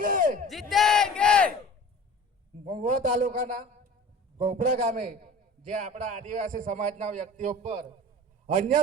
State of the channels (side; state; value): both; normal; correlation 0.41